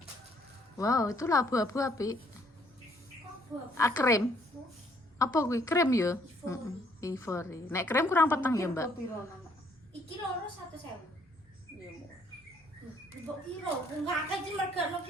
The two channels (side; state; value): both; normal; correlation 0.65